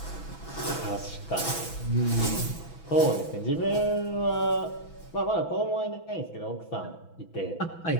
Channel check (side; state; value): right; late; 6.1 ms